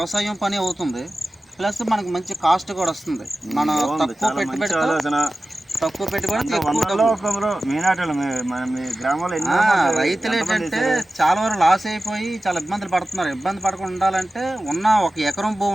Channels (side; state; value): both; normal; correlation 0.95